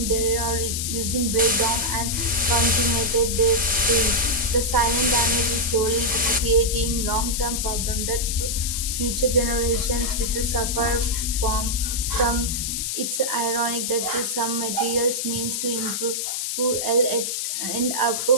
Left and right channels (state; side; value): noise; left; hiss, 2 dB below the sound